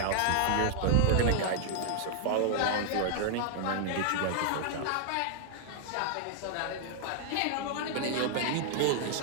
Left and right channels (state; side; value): different; both; correlation -0.01